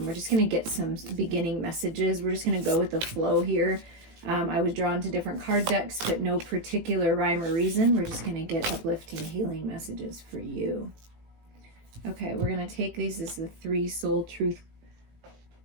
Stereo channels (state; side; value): late; left; 18 ms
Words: We're just going to get some beginning messages. We're just going to go with the flow here. I was drawn to different card decks, but no particular rhyme or reason. We're just going to get uplifting, healing messages for you. Okay, we're going to take these as the 3 soul truth